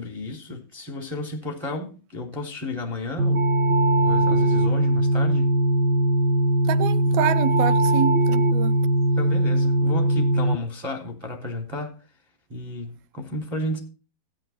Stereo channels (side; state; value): left; late; 12 ms